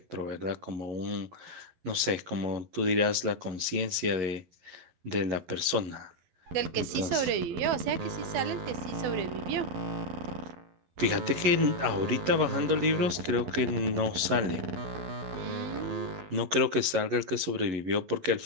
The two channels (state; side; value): late; left; 11 ms